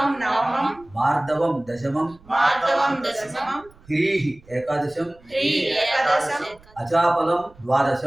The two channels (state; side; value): noise; right; rumble, 26 dB below the sound